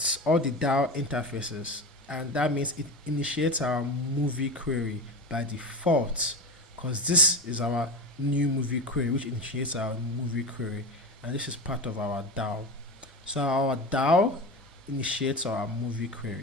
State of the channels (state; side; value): normal; both; correlation 0.24